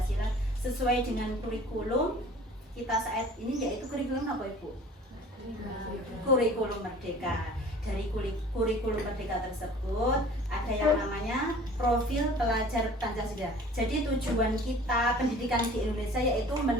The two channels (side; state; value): both; normal; correlation 0.46